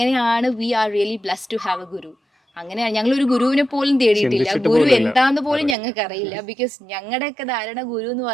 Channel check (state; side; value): drops out; left; at 5.8 s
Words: we are really blessed to have a guru. അങ്ങനെയാണ് ഞങ്ങളൊരു ഗുരുവിനെ പോലും തേടിയിട്ടില്ല, ഗുരു എന്താന്ന് പോലും ഞങ്ങൾക്ക് അറിയില്ല. ബിക്കോസ് ഞങ്ങളുടെയൊക്കെ ധാരണ ഗുരു എന്ന്